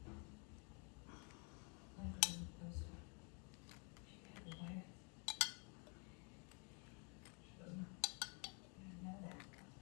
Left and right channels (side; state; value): right; quieter; 35.5 dB